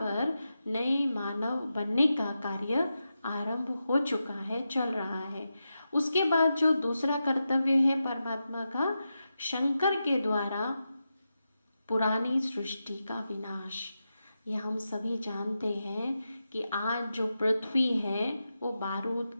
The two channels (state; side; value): inverted; both; correlation -0.89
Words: नए मानव बनने का कार्य आरंभ हो चुका है, चल रहा है। उसके बाद जो दूसरा कर्तव्य है परमात्मा का, शंकर के द्वारा पुरानी सृष्टि का विनाश। यह हम सभी जानते हैं कि आज जो पृथ्वी है वो बारूद